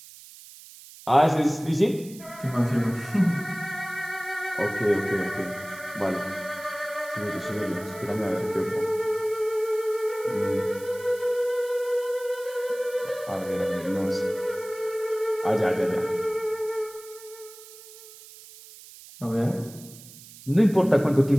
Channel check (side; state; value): right; noise; hiss, 18 dB below the sound